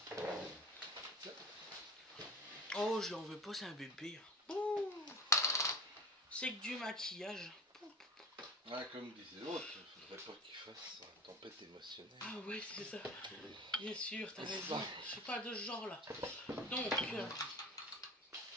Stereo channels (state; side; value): normal; both; correlation 0.35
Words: Oh, je l'en veux pas, c'est un bébé. Ouh. C'est que du maquillage. Ah, comme disait l'autre, il faudrait pas qu'il fasse une tempête émotionnelle. Ah ouais, c'est ça. Bien sûr, t'as raison. Je suis pas de ce genre là. Donc,